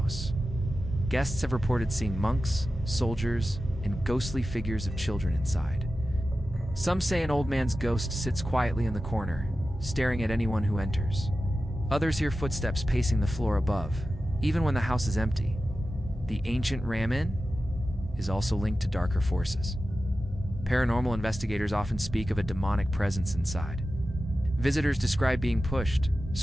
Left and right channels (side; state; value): both; normal; correlation 0.93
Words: Guests have reported seeing monks, soldiers, and ghostly figures of children inside. Some say an old man's ghost sits quietly in the corner, staring at anyone who enters. Others hear footsteps pacing the floor above, even when the house is empty. The Ancient Ram Inn is also linked to darker forces. Paranormal investigators often speak of a demonic presence inside. Visitors describe being pushed,